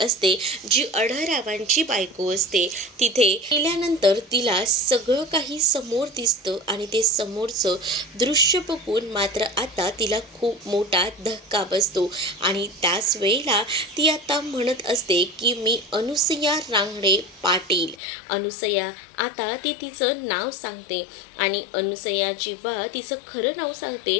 जी अढळरावांची बायको असते. तिथे गेल्यानंतर तिला सगळं काही समोर दिसतं आणि ते समोरचं दृश्य बघून मात्र आता तिला खूप मोठा धक्का बसतो. आणि त्याच वेळेला ती आता म्हणत असते की मी अनुसया रांगडे पाटील. अनुसया आता ती तिचं नाव सांगते आणि अनुसया जेव्हा तिचं खरं नाव सांगते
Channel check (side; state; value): right; drops out; at 17.9 s